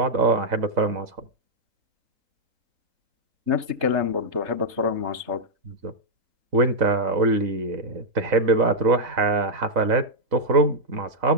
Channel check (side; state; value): left; late; 3.2 ms